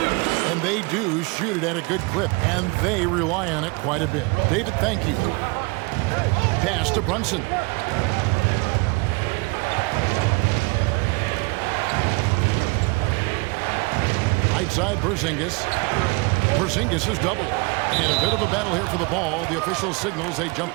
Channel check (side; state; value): left; quieter; 27.3 dB